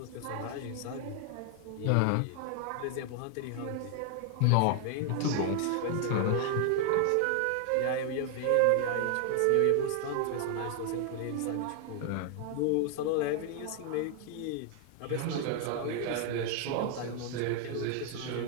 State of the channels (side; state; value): both; different; correlation 0.00